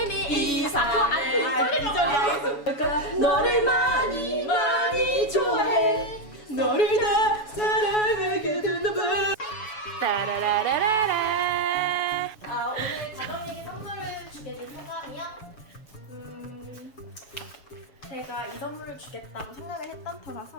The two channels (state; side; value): late; right; 7.1 ms